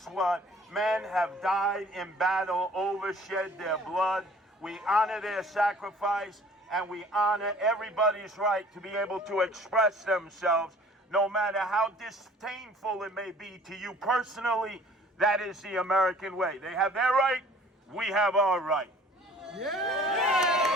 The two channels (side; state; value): both; normal; correlation 0.51